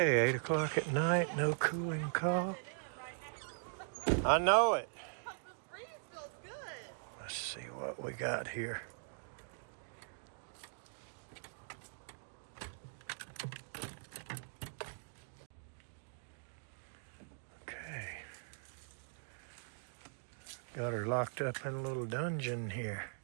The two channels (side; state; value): left; silent; digital silence